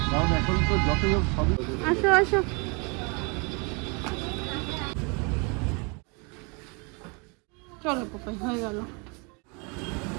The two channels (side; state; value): left; quieter; 32.0 dB